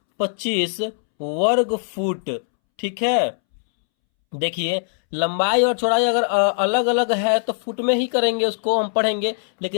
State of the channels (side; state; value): right; silent; 65 dB below the other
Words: वर्ग फुट। ठीक है, देखिए लंबाई और चौड़ाई अगर अलग अलग है तो फुट में ही करेंगे, उसको हम पढ़ेंगे।